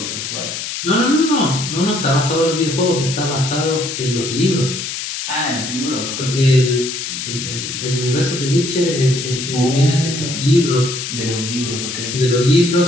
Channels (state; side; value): noise; left; hiss, 5 dB below the sound